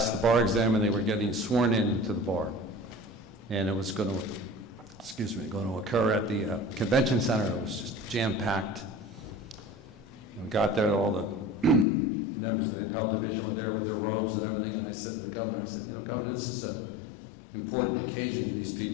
the bar exam and they were getting sworn in to the bar. And it was going to occur at the convention center. It was just jam-packed. And we got there, all the members of the appellate division were there with their robes and everything, and I said to the governor, I said, "You know, Governor, this is an important occasion to these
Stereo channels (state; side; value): drops out; right; at 11.9 s